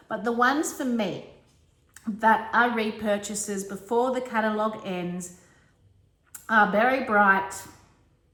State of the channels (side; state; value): both; identical; correlation 1.00